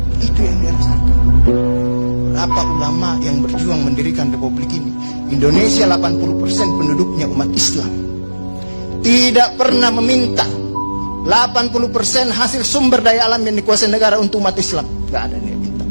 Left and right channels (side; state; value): both; inverted; correlation -1.00